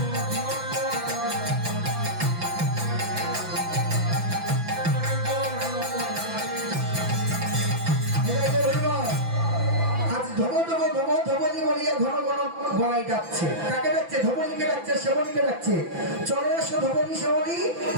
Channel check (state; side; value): late; left; 6.0 ms